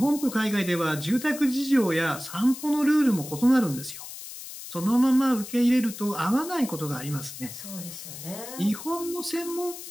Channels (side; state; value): left; noise; hiss, 12 dB below the sound